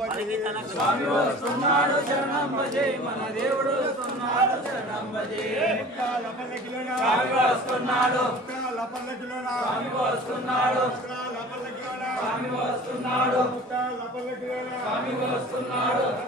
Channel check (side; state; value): both; normal; correlation 0.43